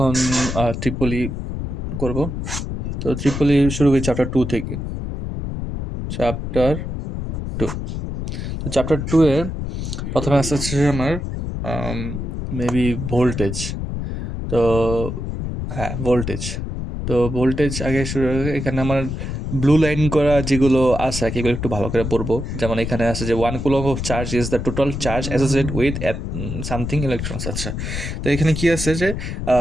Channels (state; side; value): noise; left; rumble, 5 dB below the sound